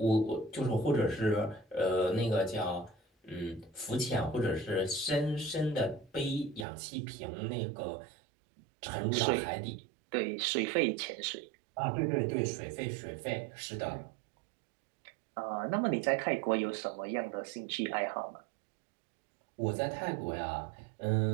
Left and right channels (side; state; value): left; drops out; at 6.7 s